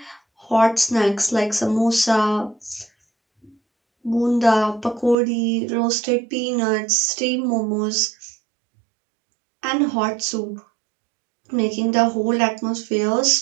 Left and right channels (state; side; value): drops out; left; at 5.2 s